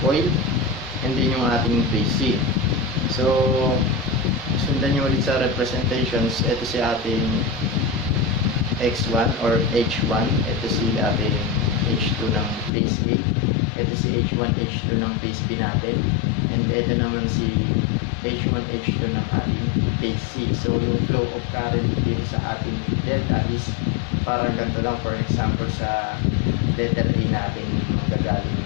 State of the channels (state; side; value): drops out; right; at 12.7 s